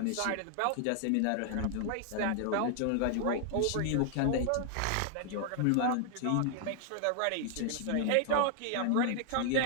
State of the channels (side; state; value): both; different; correlation 0.00